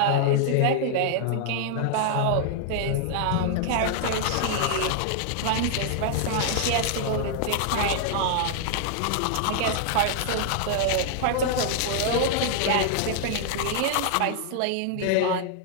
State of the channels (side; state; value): both; different; correlation -0.01